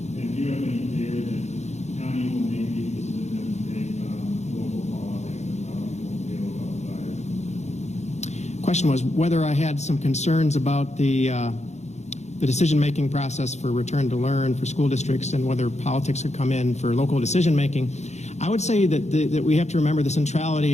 question was whether I had some concerns about the decision-making process for return to learn for school districts and whether politics could come in for local decision-making. I would say that we have to remember the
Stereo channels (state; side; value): late; right; 0.33 ms